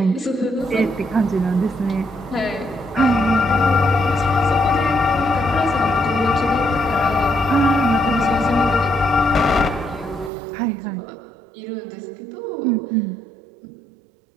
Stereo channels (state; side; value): drops out; left; at 10.3 s